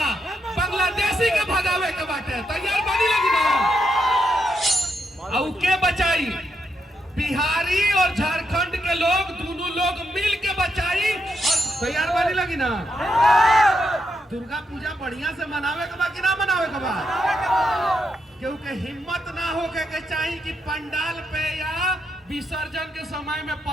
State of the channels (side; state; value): both; normal; correlation 0.81